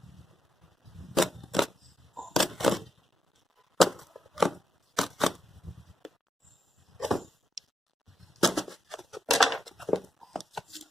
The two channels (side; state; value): both; normal; correlation 0.83